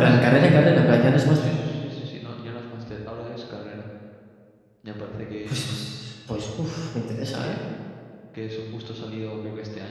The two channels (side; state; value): both; identical; correlation 1.00